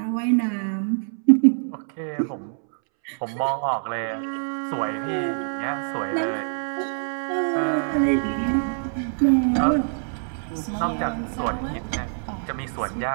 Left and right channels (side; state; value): left; silent; 62 dB below the other